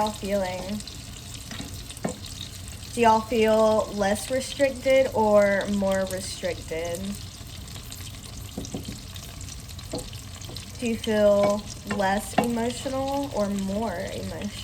feeling? Do y'all feel less restricted or more restricted? Do you feel less emotional or more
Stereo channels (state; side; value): identical; both; correlation 1.00